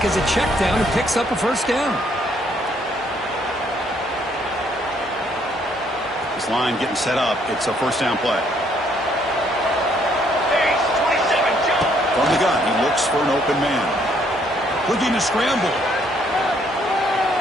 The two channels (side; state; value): both; normal; correlation 0.68